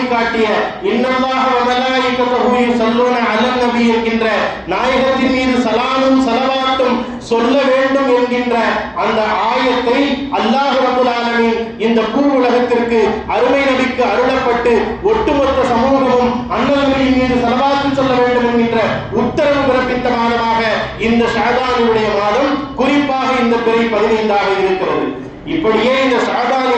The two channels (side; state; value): both; identical; correlation 1.00